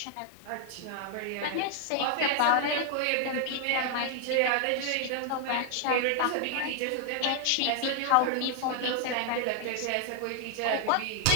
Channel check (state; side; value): different; both; correlation 0.00